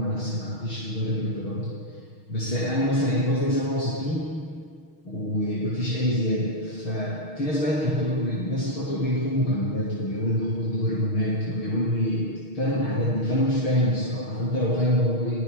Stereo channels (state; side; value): late; right; 6.4 ms